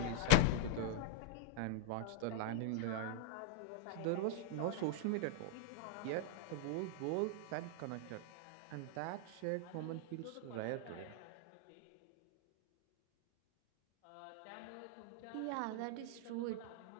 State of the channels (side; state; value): both; different; correlation -0.01